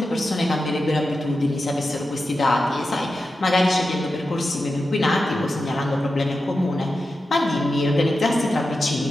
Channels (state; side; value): normal; both; correlation 0.91